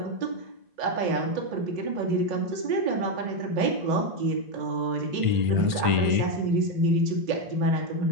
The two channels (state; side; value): late; left; 1.5 ms